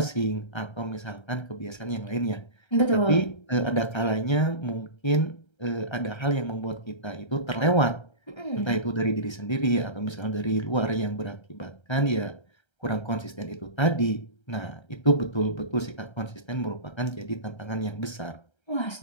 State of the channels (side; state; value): right; late; 1.3 ms